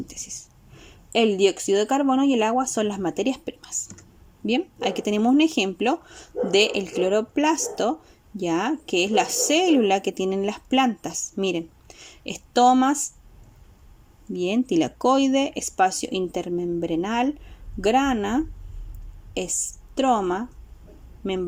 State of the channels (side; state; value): both; identical; correlation 1.00